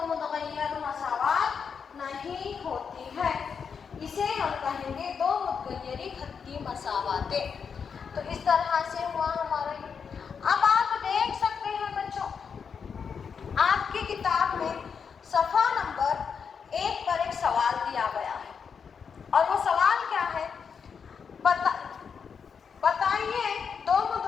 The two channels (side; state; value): right; quieter; 6.3 dB